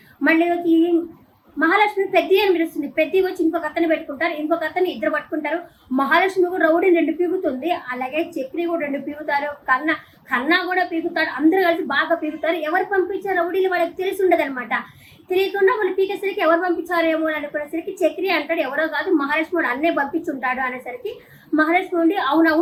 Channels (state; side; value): identical; both; correlation 1.00